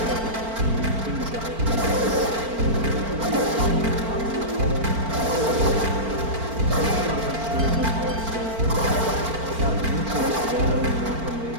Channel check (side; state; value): left; late; 4.4 ms